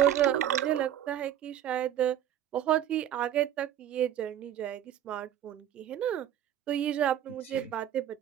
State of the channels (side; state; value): left; quieter; 10.9 dB